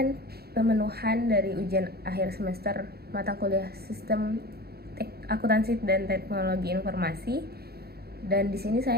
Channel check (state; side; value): late; left; 0.46 ms